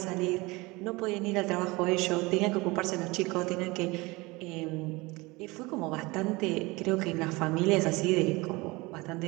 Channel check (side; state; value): left; quieter; 23.3 dB